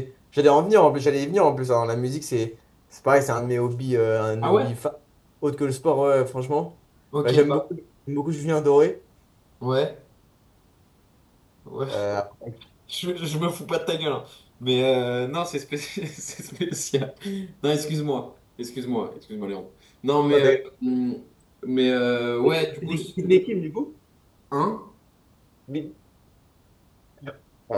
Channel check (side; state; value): both; identical; correlation 1.00